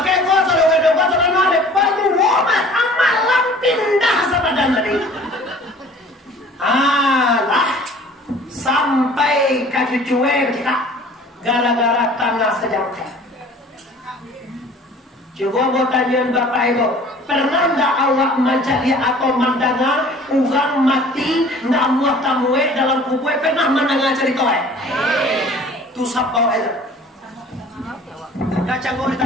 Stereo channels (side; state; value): both; normal; correlation 0.48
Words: kuasa dengan kuasa dan ada palu woman amalam pindah sa badan tadi. Allah sampai kaki cuek kita gara-gara tanah sejauh. Coba mau tanya Bapak Ibu, pernah nggak awak mencari atau mendengar orang mati nggak muat tamuwe dalam kubur? Pernah mendengar cerita? Tu sabau aja. Kacang di